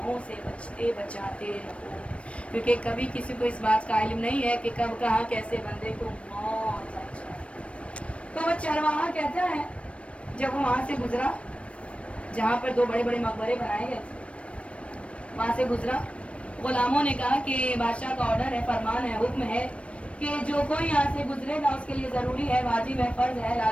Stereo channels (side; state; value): right; late; 0.061 ms